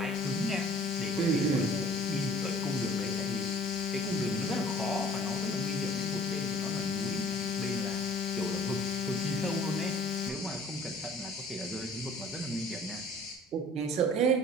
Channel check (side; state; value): both; normal; correlation 0.50